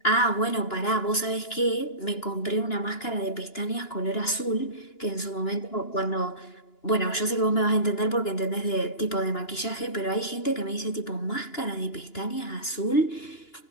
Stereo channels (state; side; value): late; right; 2.9 ms